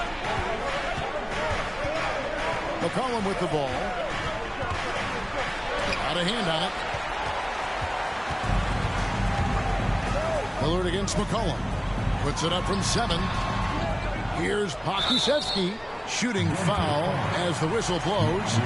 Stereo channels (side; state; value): both; identical; correlation 1.00